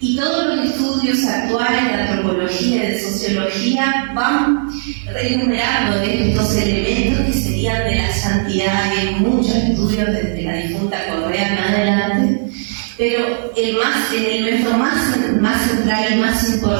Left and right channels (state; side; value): silent; left; digital silence